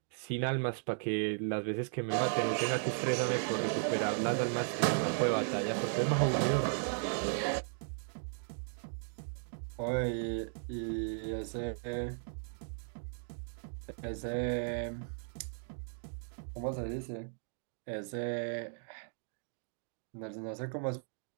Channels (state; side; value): silent; left; digital silence